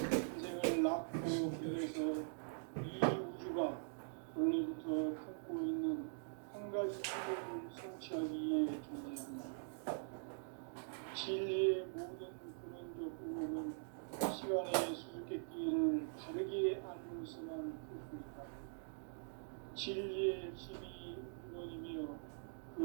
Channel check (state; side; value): silent; left; digital silence